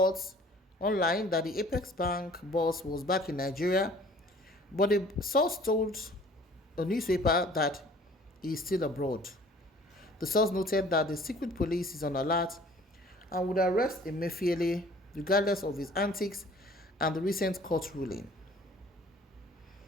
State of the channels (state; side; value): normal; both; correlation 0.52